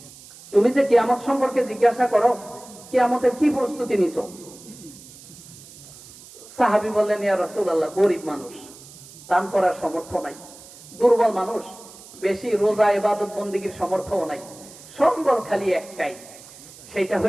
তুমি যে কিয়ামত সম্পর্কে জিজ্ঞাসা করো, কিয়ামতের কি প্রস্তুতি নিছো? সাহাবী বললেন, ইয়া রাসূলুল্লাহ, গরীব মানুষ, দান করার সামর্থ্য নাই। দুর্বল মানুষ, বেশি রোজা ইবাদত বন্দেগীর সামর্থ্য নাই। সম্বল খালি একটাই, সেটা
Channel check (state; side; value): noise; right; hiss, 19 dB below the sound